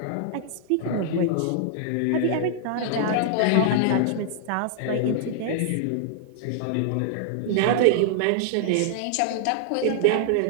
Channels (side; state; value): both; different; correlation -0.01